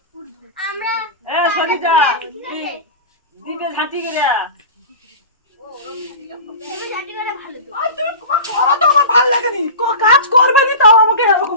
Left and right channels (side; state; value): both; inverted; correlation -0.30